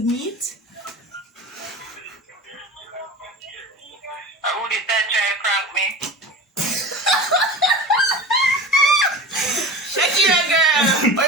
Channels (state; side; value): normal; both; correlation 0.32